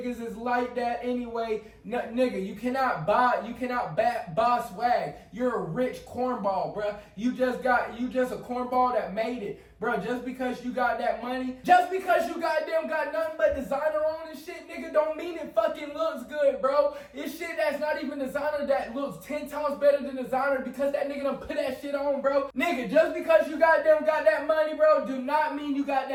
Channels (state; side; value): identical; both; correlation 1.00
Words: is like that anyway. Nigga, you cannot buy swag. You're a rich cornball, bruh. You just a cornball that made it. Bro, just because you got that money, just because you got nothing but designer on and shit, nigga, don't mean it fucking looks good, bro. It's shit that's not even designer that looks 10 times better than designer because that nigga done put that shit on, bro. Nigga, just because you got that money, bro, do not mean you got